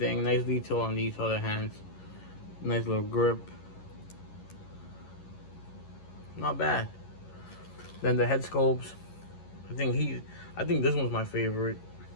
Nice detail on these other hands. Nice little grip. Not bad. Then the head sculpts. I think this one's my favorite.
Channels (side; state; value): right; late; 11 ms